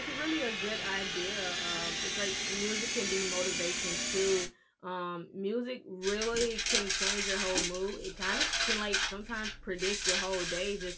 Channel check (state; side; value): identical; both; correlation 1.00